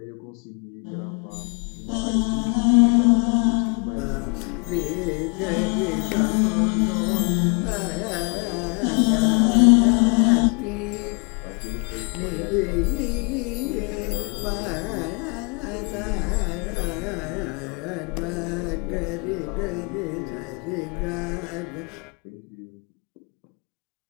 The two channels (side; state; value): right; quieter; 34.3 dB